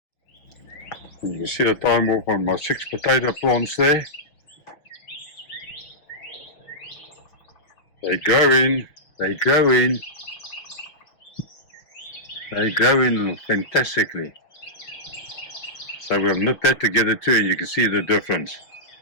And you can see the time warp on my 6 potato plants there. They're growing, they're growing, they're growing fantastically. So we'll knit that together too, and you can see the difference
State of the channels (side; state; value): right; late; 6.1 ms